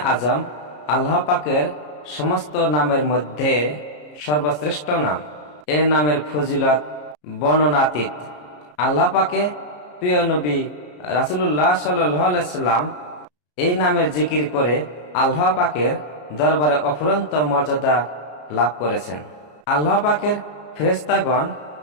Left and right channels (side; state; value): right; late; 33 ms